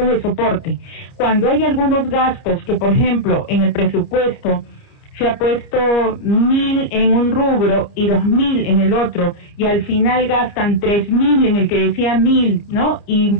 de soporte. Cuando hay algunos gastos que, por ejemplo, en el presupuesto se ha puesto 1.000 en un rubro y 2.000 en el otro, y al final gastan 3.000 en el que decía 1.000, ¿no?, y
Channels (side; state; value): right; late; 29 ms